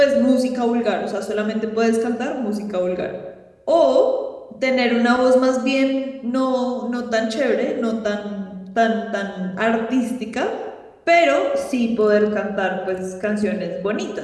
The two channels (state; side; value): identical; both; correlation 1.00